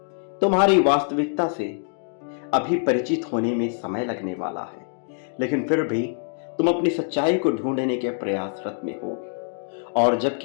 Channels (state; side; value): silent; right; digital silence